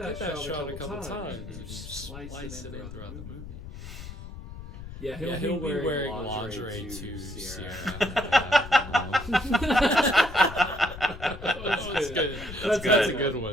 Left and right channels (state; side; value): noise; left; rumble, 12 dB below the sound